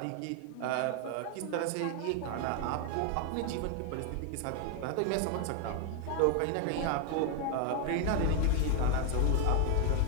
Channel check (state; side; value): different; both; correlation 0.01